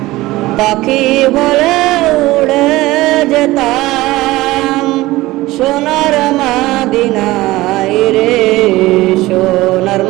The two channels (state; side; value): quieter; left; 18.5 dB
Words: পাখি বলে উড়ে যেতাম সোনার মাদিনায় রে, সোনার